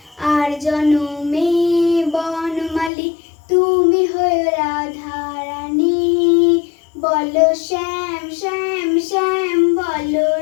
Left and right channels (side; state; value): right; drops out; at 2.9 s